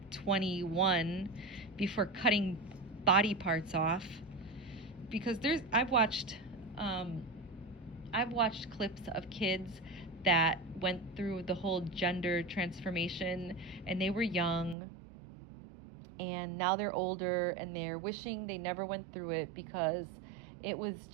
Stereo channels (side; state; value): left; drops out; at 14.8 s